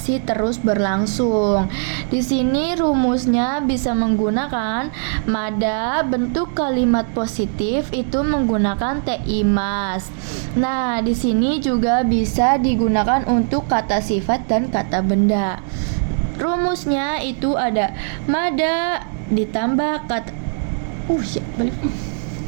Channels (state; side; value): silent; left; digital silence